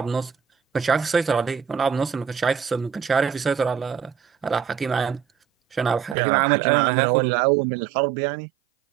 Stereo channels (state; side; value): drops out; left; at 6.2 s